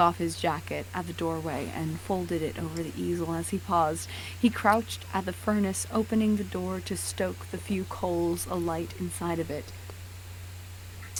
his jacket at the doorway and folded it over the easel as he paused. He crouched at the furnace, opening the door to stoke the few coals alight inside it.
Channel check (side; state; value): both; identical; correlation 1.00